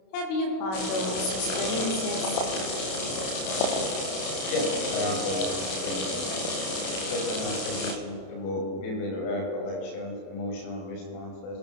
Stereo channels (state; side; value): late; right; 32 ms